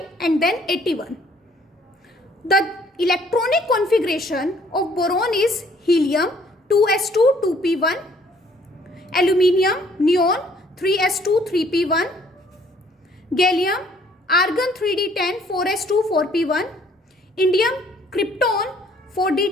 and then 81. The electronic configuration of boron is helium 2s2 2p1, aluminium neon 3s2 3p1, gallium argon 3d10 4s2 4p1, indium krypton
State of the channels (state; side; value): normal; both; correlation 0.61